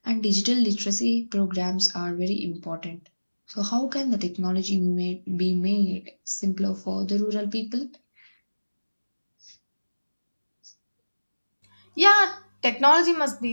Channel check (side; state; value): both; inverted; correlation -1.00